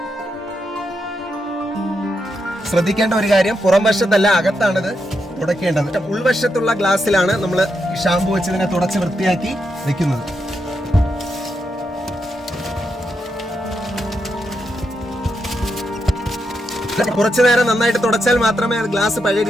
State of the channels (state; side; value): normal; both; correlation 0.83